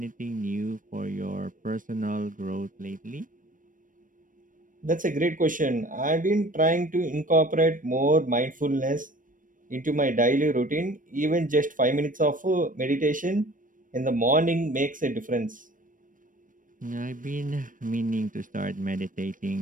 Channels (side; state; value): left; late; 0.38 ms